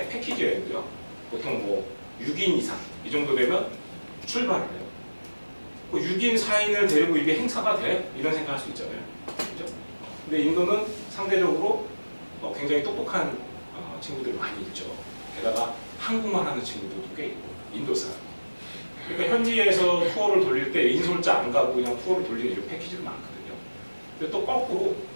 패키지 여행도요. 보통 뭐 6인 이상 이 정도 되면 출발을 해요. 6인, 4인을 데리고 이게 행사가 돼? 이런 생각할 수 있잖아요. 그죠? 근데 인도는 상대적으로 굉장히 똑똑한 친구들이 많이 있죠. 게다가 한국말 하는 친구들도 꽤 있고, 인도 사람. 그러니까 현지에서 투어를 돌릴 때 인솔자 안 가고 그냥 투어를 돌리는 이런 패키지도 많거든요. 근데 또 거꾸로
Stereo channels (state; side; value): inverted; both; correlation -1.00